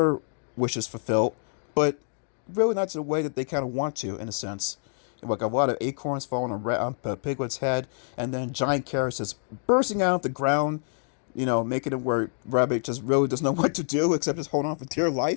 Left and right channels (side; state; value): right; silent; digital silence